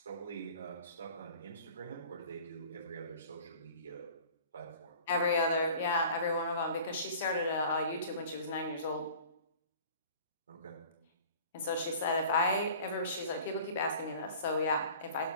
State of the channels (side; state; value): both; inverted; correlation -0.45